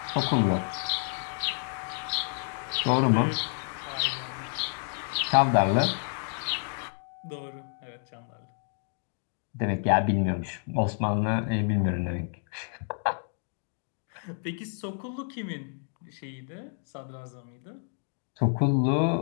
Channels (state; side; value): silent; right; 58 dB below the other